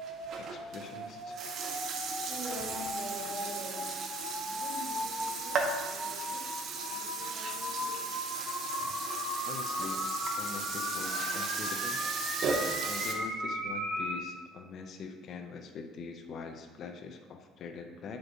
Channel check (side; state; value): both; normal; correlation 0.54